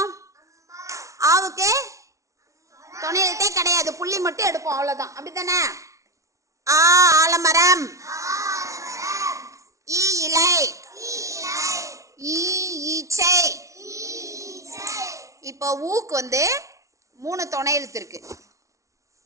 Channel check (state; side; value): late; left; 0.15 ms